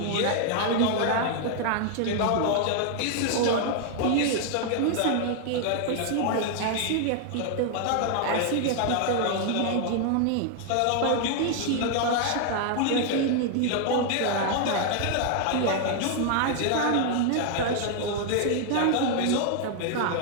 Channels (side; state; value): both; different; correlation 0.00